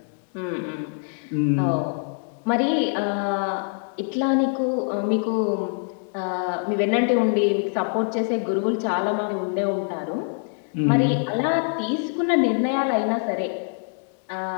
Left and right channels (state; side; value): silent; right; 60 dB below the other